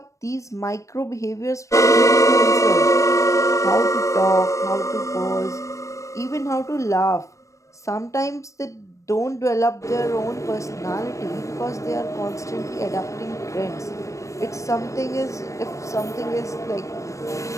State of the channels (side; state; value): right; late; 0.15 ms